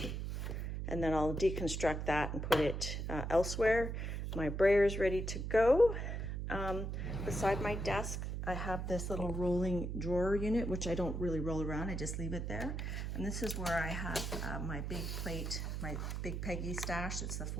And then I'll deconstruct that and put it elsewhere. My brayer is ready to go. Beside my desk, I have this little rolling drawer unit, which I don't really roll around. I just leave it there. And this is where I have my big plate, my Big Peggy stash. It's the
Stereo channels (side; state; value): right; noise; hum, 3 dB below the sound